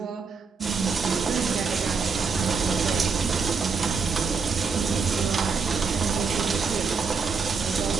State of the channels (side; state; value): left; quieter; 5.2 dB